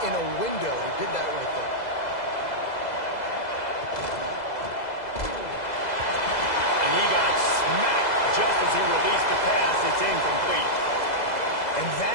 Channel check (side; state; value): right; late; 2.0 ms